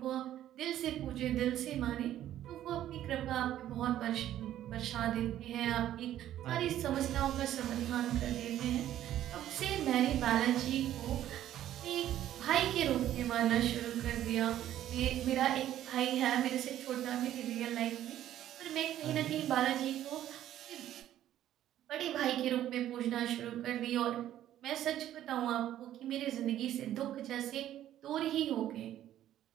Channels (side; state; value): left; quieter; 12.2 dB